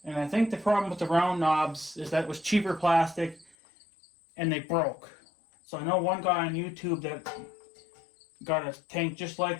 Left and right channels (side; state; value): right; drops out; at 3.6 s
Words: And I think the problem with the round knobs is that it was cheaper plastic and they broke. So I know one guy on YouTube that got a tank just